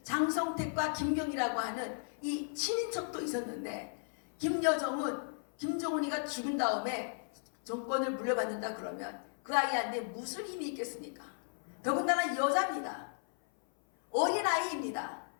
장성택과 김경이라고 하는 이 친인척도 있었는데, 김여정은 김정은이가 죽은 다음에 정권을 물려받는다 그러면 그 아이한테 무슨 힘이 있겠습니까? 더군다나 여자입니다. 어린아이입니다.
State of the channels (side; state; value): right; silent; 54 dB below the other